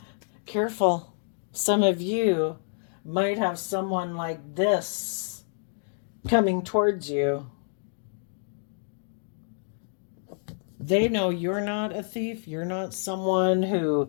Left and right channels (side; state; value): right; silent; digital silence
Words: Careful. Some of you might have someone like this coming towards you. They know you're not a thief. You're not someone who